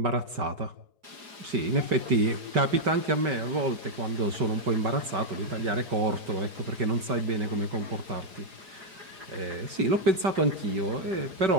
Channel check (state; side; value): late; left; 5.2 ms